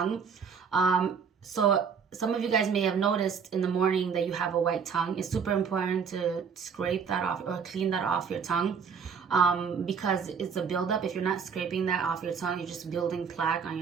So some of you guys may have noticed in the morning that you have a white tongue. It's super important to scrape that off or clean that off your tongue because it's a buildup. If you're not scraping that off your tongue, you're just building plaque on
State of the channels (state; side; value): quieter; left; 6.4 dB